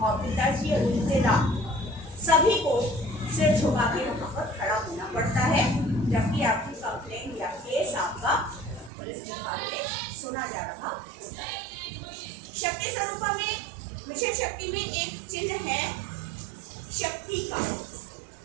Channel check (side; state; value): left; drops out; at 8.9 s